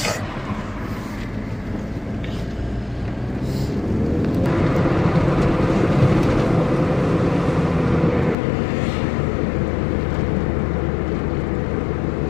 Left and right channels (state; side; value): drops out; right; at 8.3 s